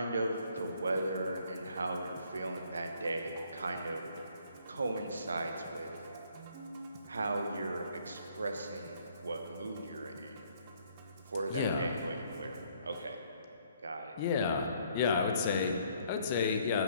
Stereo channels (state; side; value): inverted; both; correlation -0.64